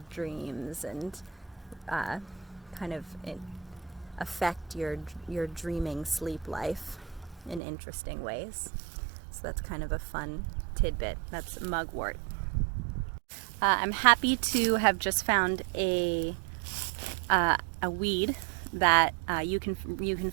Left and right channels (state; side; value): drops out; left; at 7.6 s